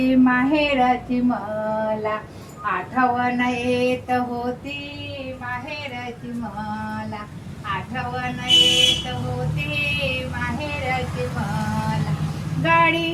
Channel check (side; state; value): both; identical; correlation 1.00